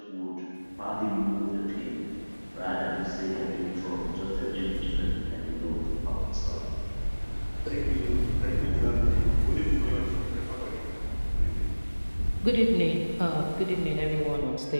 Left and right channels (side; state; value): both; inverted; correlation -1.00